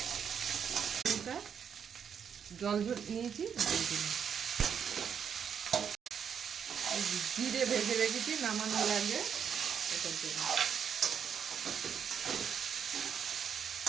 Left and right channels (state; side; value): quieter; left; 7.6 dB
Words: জল নিয়েছি দিলাম, জিরে ভেজে রেখেছি নামানোর আগে, এটার জন্য